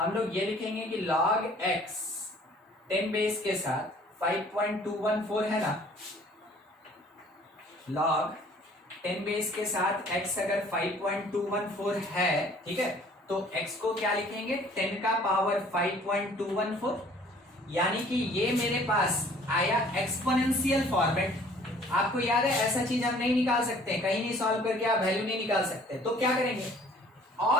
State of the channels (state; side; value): normal; both; correlation 0.54